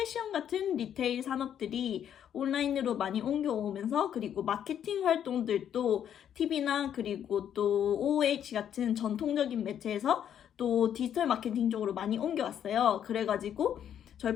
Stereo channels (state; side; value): quieter; right; 9.5 dB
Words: 같은 리테일 산업들이 온라인으로 많이 옮겨오면서 그리고 마케팅 활동들도 TV나 그리고 또 OOH 같은 전통적인 매체에서 또 디지털 마케팅 쪽으로 많이 옮겨왔어요. 그래가지고 저희